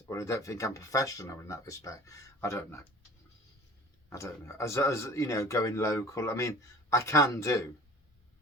or I don't think I'm professional in that respect, I don't know. As you know, going local, I mean, I can do,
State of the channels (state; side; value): normal; both; correlation 0.44